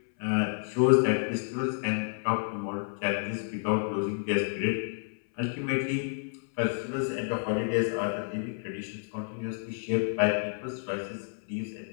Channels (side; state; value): right; silent; 58 dB below the other